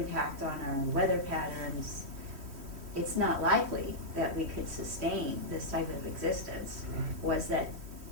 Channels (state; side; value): late; left; 3.1 ms